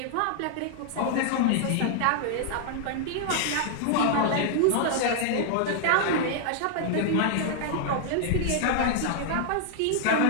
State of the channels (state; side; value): different; both; correlation 0.00